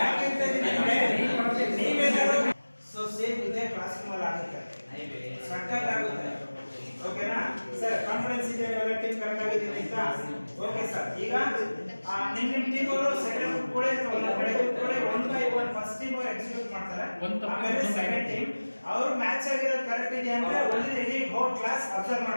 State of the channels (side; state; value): both; inverted; correlation -1.00